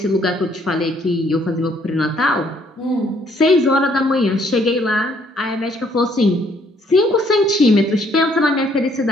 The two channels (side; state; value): both; normal; correlation 0.66